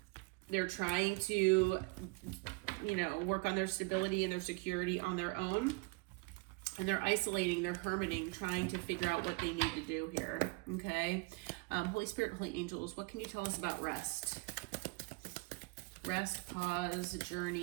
They're trying to, work on their stability and their security on their own. And they're isolating, they're hermiting, trying to figure out what they need to do here. Okay, Holy Spirit, Holy Angels, what can you tell us about rest? Rest, pause,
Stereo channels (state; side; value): quieter; left; 28.0 dB